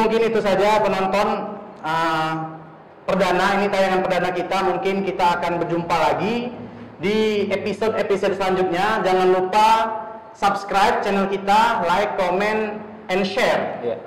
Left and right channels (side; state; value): both; identical; correlation 1.00